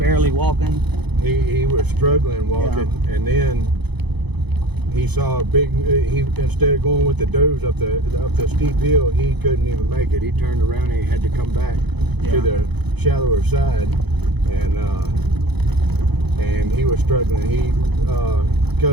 walking. He was struggling walking, and then he saw a big. Instead of going with the does up the steep hill, he couldn't even make it. He turned around and he had to come back to the shallower side, and he was struggling.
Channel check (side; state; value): left; late; 0.99 ms